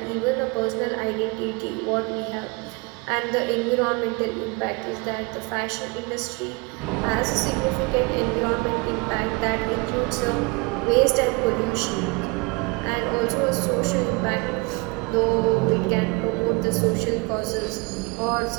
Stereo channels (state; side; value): quieter; left; 28.2 dB